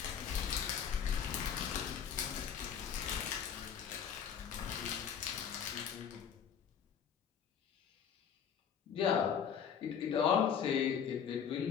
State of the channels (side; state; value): right; quieter; 7.8 dB